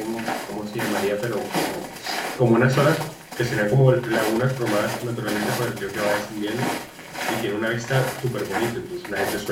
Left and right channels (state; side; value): identical; both; correlation 1.00